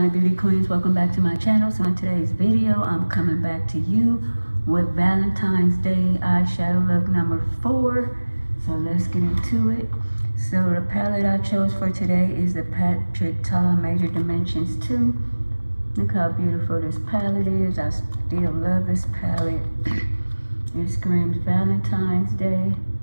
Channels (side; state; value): both; inverted; correlation -1.00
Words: beauty queens, welcome back to my channel. So in today's video I'm coming back to you with Valentine's Day eyeshadow look number 4. So let's get into it. So the palette I chose for today is the Patrick Ta Major Dimensions 2. Look how beautiful this palette is. I still love this palette. It screams Valentine's Day.